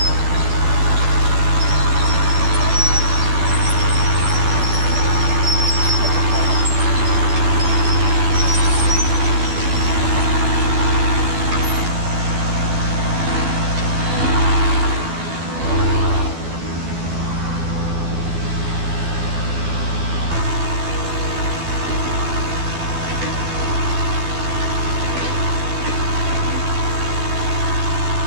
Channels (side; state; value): left; late; 12 ms